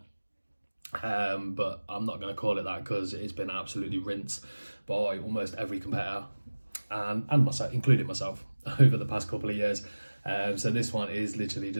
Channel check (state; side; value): inverted; both; correlation -1.00